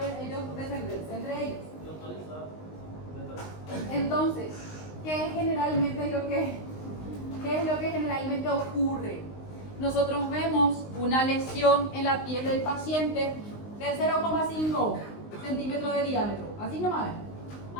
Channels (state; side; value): late; right; 19 ms